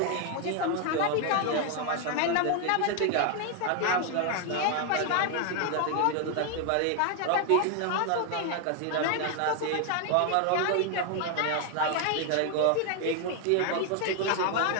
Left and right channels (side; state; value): both; different; correlation 0.01